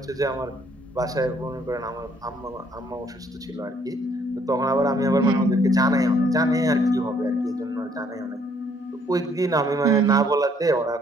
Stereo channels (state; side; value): normal; both; correlation 0.65